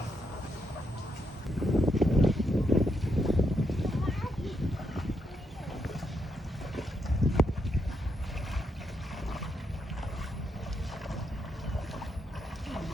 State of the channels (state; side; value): normal; both; correlation 0.80